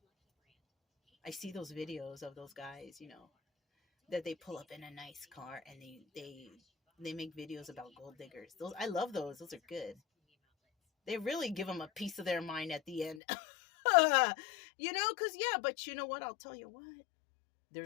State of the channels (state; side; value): drops out; right; at 13.2 s